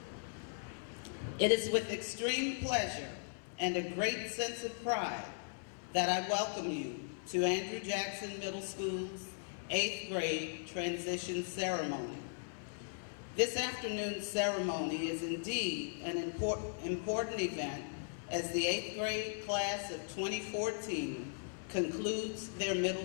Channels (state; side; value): silent; right; 52 dB below the other